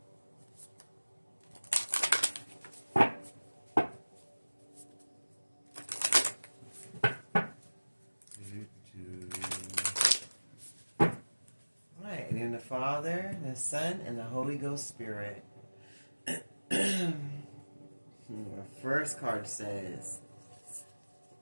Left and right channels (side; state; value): both; inverted; correlation -1.00